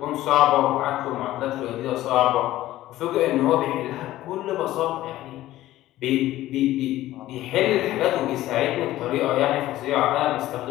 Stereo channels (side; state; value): right; quieter; 15.1 dB